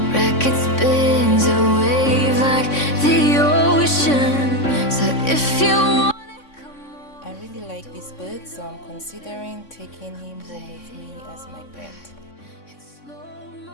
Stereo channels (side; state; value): right; late; 3.6 ms